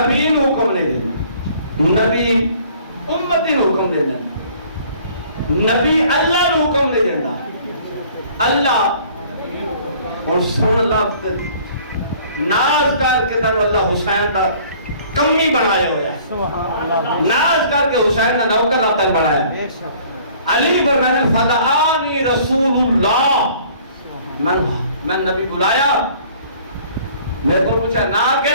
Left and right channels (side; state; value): both; inverted; correlation -0.54